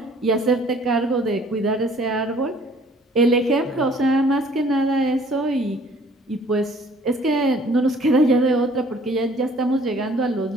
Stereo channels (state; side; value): normal; both; correlation 0.56